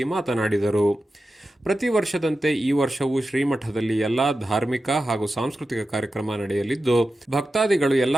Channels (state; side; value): normal; both; correlation 0.92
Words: ಮಾತನಾಡಿದರು. ಪ್ರತಿ ವರ್ಷದಂತೆ ಈ ವರ್ಷವೂ ಶ್ರೀಮಠದಲ್ಲಿ ಎಲ್ಲಾ ಧಾರ್ಮಿಕ ಹಾಗೂ ಸಾಂಸ್ಕೃತಿಕ ಕಾರ್ಯಕ್ರಮ ನಡೆಯಲಿದ್ದು, ಭಕ್ತಾದಿಗಳು